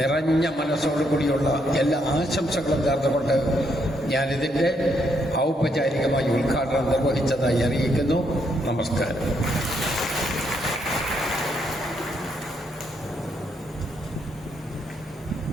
മനസ്സോടുകൂടിയുള്ള എല്ലാ ആശംസകളും നേർന്നുകൊണ്ട് ഞാനിതിൻ്റെ ഔപചാരികമായി ഉദ്ഘാടനം നിർവഹിച്ചതായി അറിയിക്കുന്നു. നമസ്കാരം.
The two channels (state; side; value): normal; both; correlation 0.75